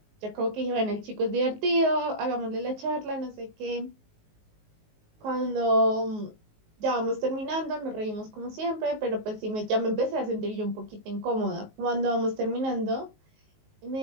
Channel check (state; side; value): late; left; 19 ms